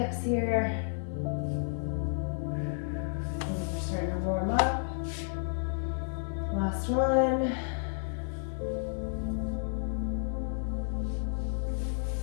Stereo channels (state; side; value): silent; right; 57 dB below the other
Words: here. Starting to warm up. Last one.